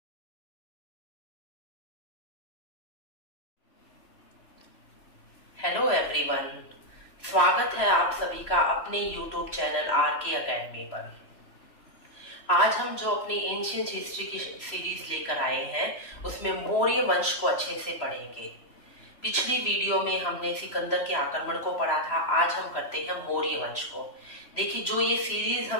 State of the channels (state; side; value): late; right; 3.0 ms